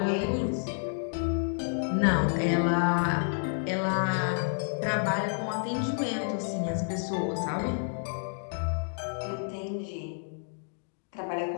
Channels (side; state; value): right; silent; digital silence